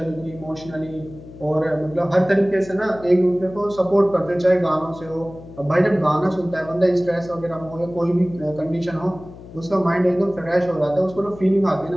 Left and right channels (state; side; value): noise; left; hum, 17 dB below the sound